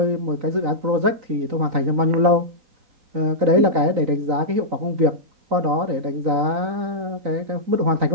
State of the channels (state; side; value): late; left; 3.9 ms